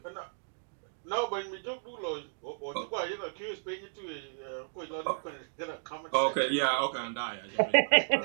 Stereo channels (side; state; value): left; silent; digital silence